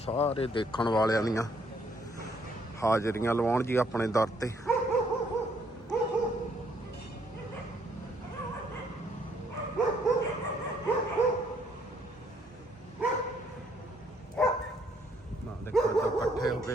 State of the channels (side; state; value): both; normal; correlation 0.68